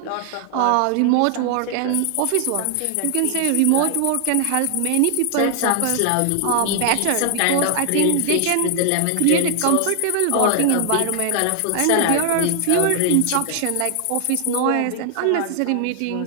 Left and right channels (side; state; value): both; different; correlation 0.00